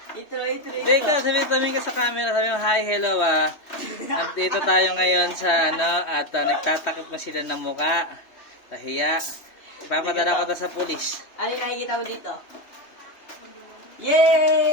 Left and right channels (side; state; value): right; late; 3.2 ms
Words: Intro. Hindi ka, sabi ka sa camera, sabi mo, hi, hello Nandito tayo ngayon sa at nagtatakip na sila ng muka. Kahiya. Ipapadala ko to sa pulis. Ano yung nakikita mo dito?